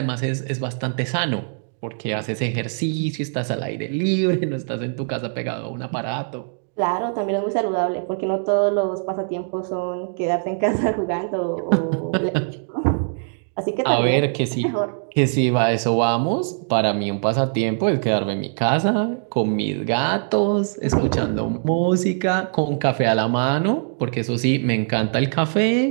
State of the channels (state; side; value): silent; left; digital silence